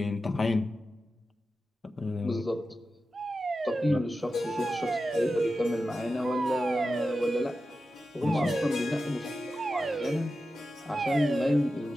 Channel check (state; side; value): normal; both; correlation 0.92